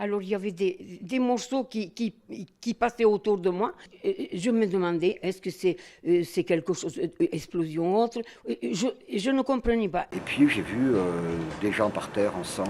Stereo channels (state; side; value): identical; both; correlation 1.00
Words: il y avait des morceaux qui passaient autour de moi. Je me demandais, est-ce que c'est quelque chose, explosion autre? Je ne comprenais pas. Et puis j'ai vu des gens par terre en